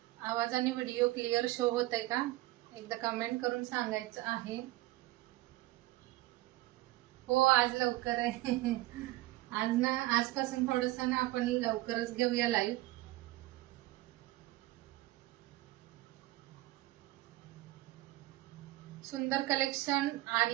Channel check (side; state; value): left; quieter; 18.1 dB